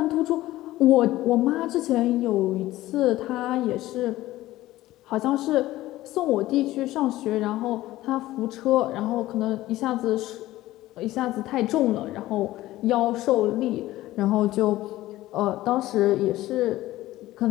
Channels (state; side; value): quieter; right; 16.2 dB